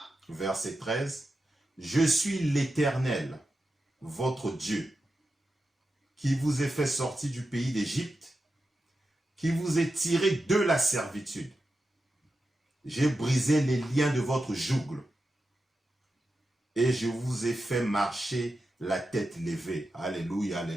Verset 13. Je suis l'Éternel, votre Dieu, qui vous ai fait sortir du pays d'Égypte, qui vous ai tiré de la servitude. J'ai brisé les liens de votre joug et je vous ai fait marcher la tête levée. Alléluia,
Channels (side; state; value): both; normal; correlation 0.90